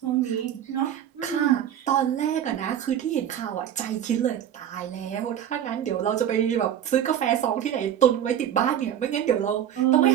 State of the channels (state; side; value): quieter; left; 10.1 dB